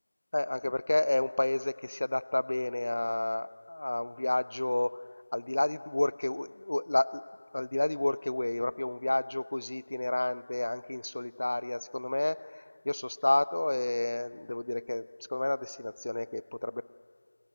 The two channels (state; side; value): inverted; both; correlation -1.00